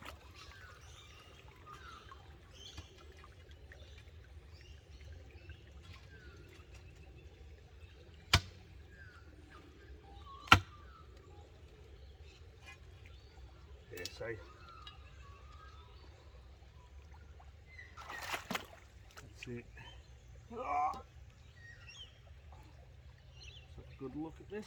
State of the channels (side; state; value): both; identical; correlation 1.00